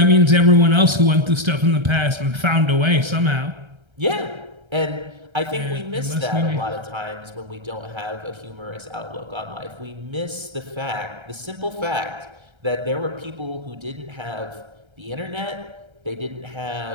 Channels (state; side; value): late; left; 1.3 ms